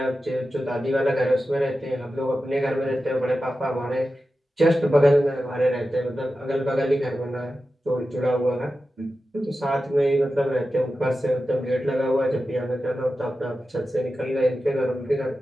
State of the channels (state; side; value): normal; both; correlation 0.92